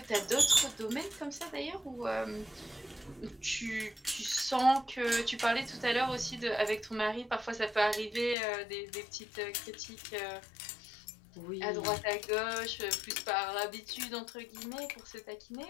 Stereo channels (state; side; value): drops out; right; at 8.3 s